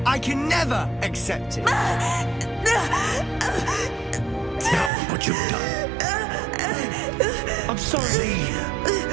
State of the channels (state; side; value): drops out; left; at 4.9 s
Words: I can never accept it. Now, what you've done. I'm sorry.